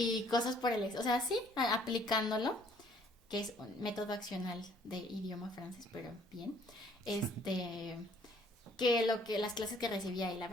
cosas por el o sea, sí, aplicándolo, que es un método accional de idioma francés, pero bien, que las clases que recibía, y la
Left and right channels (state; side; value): normal; both; correlation 0.60